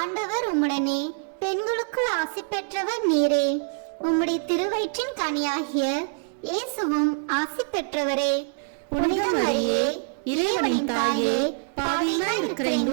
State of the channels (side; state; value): left; silent; digital silence